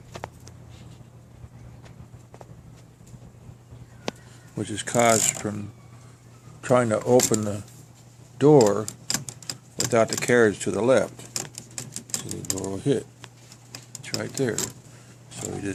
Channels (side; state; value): both; identical; correlation 1.00